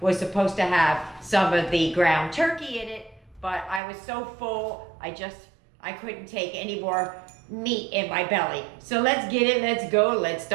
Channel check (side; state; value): left; drops out; at 3.8 s